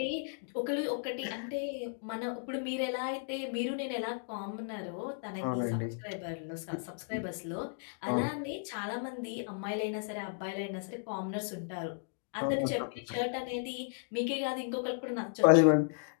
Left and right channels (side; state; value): right; silent; digital silence